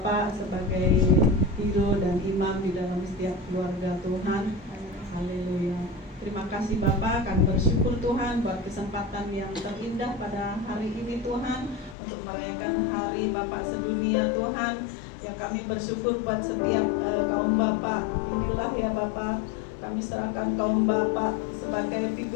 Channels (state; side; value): drops out; right; at 12.0 s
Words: sebagai hero dan imam di dalam setiap keluarga Tuhan. Haleluya. Terima kasih Bapak, kami bersyukur Tuhan buat kesempatan yang terindah pada hari ini Tuhan, untuk merayakan hari Bapak sedunia Tuhan. Yang kami bersyukur buat setiap kaum Bapak. Inilah ya Bapak, kami serahkan kaum Bapak sebagai